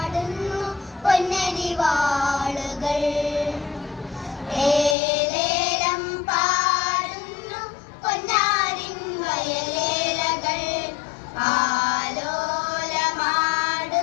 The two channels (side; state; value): right; drops out; at 5.0 s